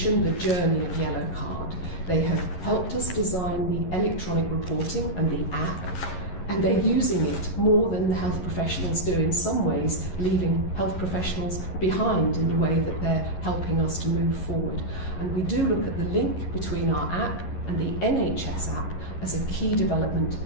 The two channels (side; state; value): right; late; 11 ms